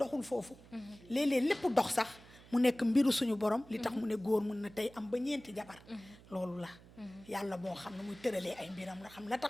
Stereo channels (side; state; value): right; noise; hum, 22 dB below the sound